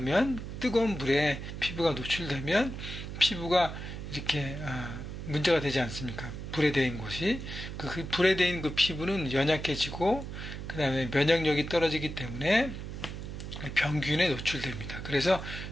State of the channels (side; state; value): right; noise; hum, 8 dB below the sound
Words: 뜨거운 물에 피부가 노출되면 피부가 이렇게 문제가 되지 않습니까? 불에 데인 곳이 그 불에 데인 그 피부는 연약해지고 그 다음에 면역력이 떨어지기 때문에 병균에 노출됩니다. 그래서